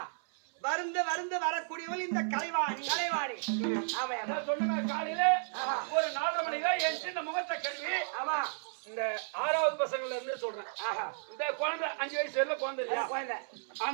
வருந்த வரக்கூடியவள் இந்த கலைவாணி. ஆமா சொன்ன காலையில ஒரு 4:30 மணிக்கு என் சின்ன முகத்தை கழுவி ஆமா இந்த 6வது பசங்கள்ல இருந்து சொல்றேன். இந்த குழந்தை 5 வயசு வரல குழந்தை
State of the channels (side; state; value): left; silent; 55 dB below the other